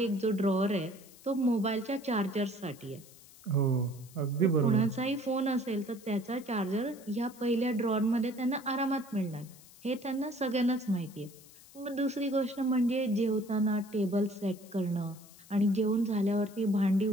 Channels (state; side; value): noise; left; hiss, 22 dB below the sound